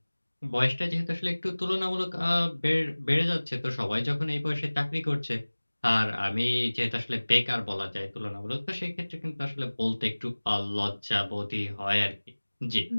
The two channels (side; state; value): both; inverted; correlation -1.00